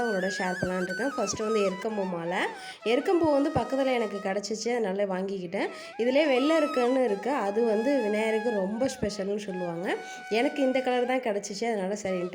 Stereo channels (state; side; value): identical; both; correlation 1.00